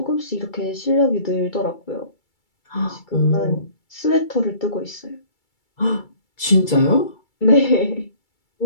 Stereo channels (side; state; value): right; late; 2.3 ms